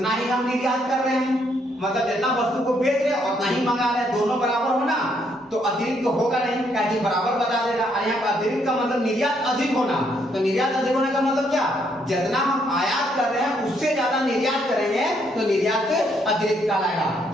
ही हम निर्यात कर रहे हैं, मतलब जितना वस्तु को बेच रहे हैं उतना ही मंगा रहे हैं, दोनों बराबर होना। तो अतिरिक्त तो होगा नहीं, क्या बराबर बता देगा। और यहाँ पर अतिरिक्त का मतलब निर्यात अधिक होना, तो निर्यात अधिक होने का मतलब क्या, जितना हम आयात कर रहे हैं उससे ज्यादा निर्यात करेंगे तो निर्यात अतिरिक्त कहलाएगा।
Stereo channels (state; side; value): normal; both; correlation 0.72